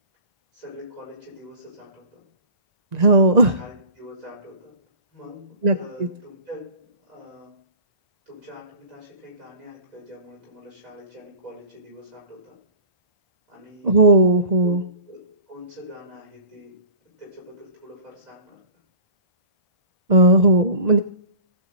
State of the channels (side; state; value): left; late; 1.9 ms